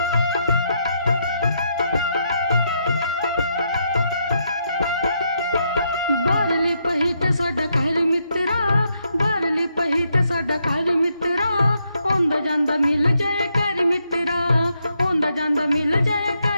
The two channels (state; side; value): inverted; both; correlation -0.78